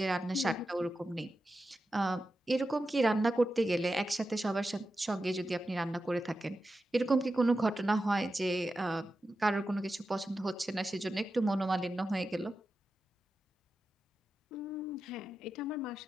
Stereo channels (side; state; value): both; normal; correlation 0.91